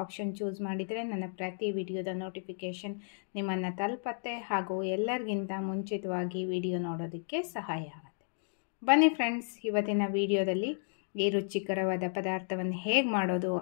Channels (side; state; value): right; silent; digital silence